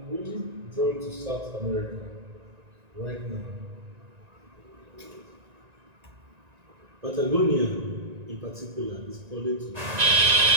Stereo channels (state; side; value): late; left; 1.9 ms